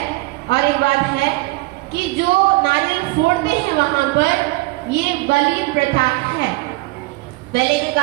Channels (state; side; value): quieter; left; 22.1 dB